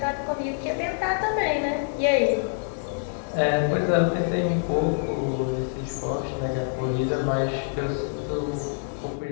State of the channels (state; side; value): silent; right; digital silence